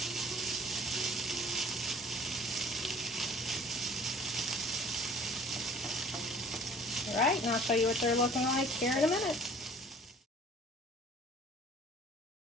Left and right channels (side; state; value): both; normal; correlation 0.51